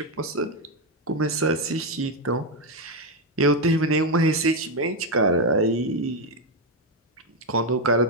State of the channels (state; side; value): normal; both; correlation 0.05